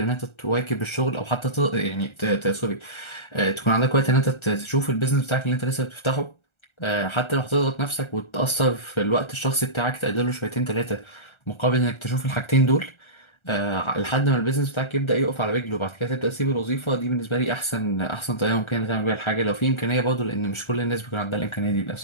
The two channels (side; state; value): right; late; 1.3 ms